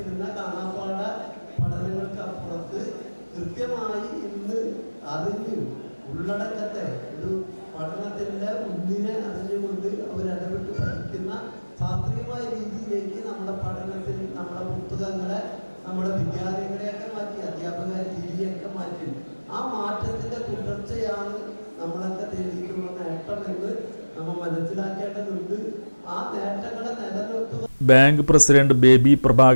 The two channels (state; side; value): inverted; both; correlation -1.00